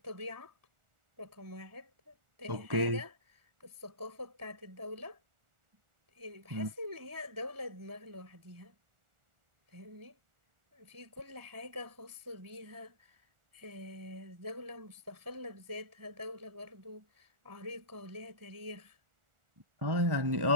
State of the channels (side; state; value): left; late; 1.4 ms